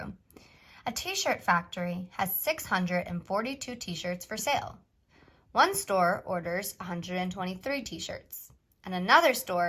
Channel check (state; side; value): identical; both; correlation 1.00